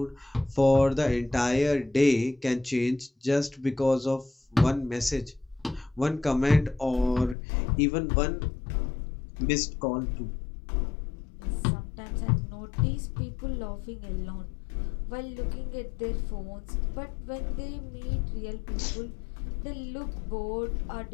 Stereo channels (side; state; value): right; drops out; at 7.4 s